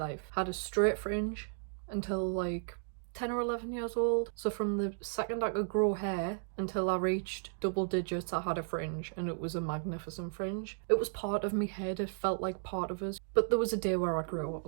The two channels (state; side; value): silent; left; digital silence